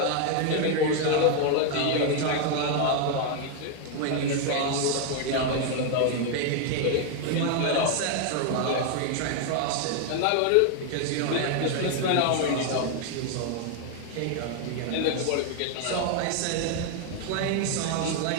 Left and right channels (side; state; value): both; different; correlation 0.01